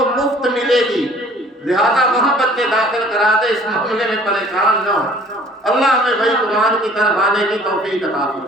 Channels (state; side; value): normal; both; correlation 0.53